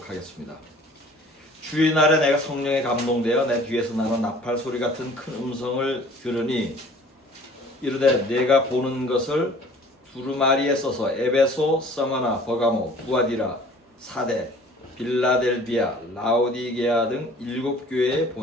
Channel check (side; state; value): both; normal; correlation 0.50